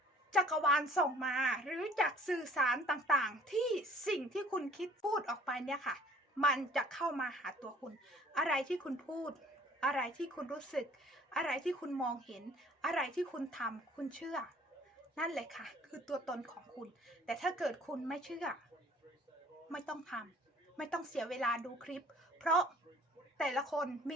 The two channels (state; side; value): normal; both; correlation 0.54